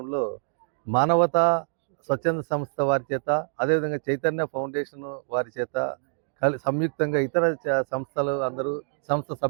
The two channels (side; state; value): left; silent; digital silence